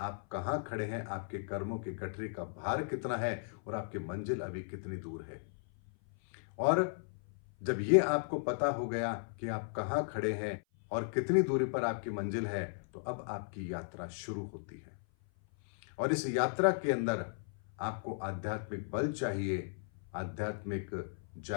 कहां खड़े हैं, आपके कर्मों के गठरी का भार कितना है और आपकी मंजिल अभी कितनी दूर है। और जब ये आपको पता हो गया कि आप कहां खड़े हैं और कितनी दूरी पर आपकी मंजिल है, तो अब आपकी यात्रा शुरू होती है। और इस यात्रा के अंदर आपको आध्यात्मिक बल चाहिए, आध्यात्मिक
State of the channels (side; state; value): right; silent; 54 dB below the other